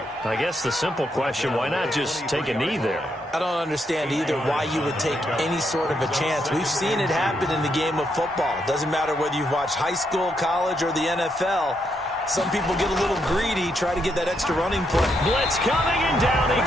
I guess the simple question, why not just take a knee there? I don't understand either why you would take any sort of a chance. We've seen it happen in the game of football. Doesn't matter whether you've watched high school, college, or the NFL. Some people get a little greedy, try to get that extra running play. Blitz coming, and down he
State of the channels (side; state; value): both; normal; correlation 0.78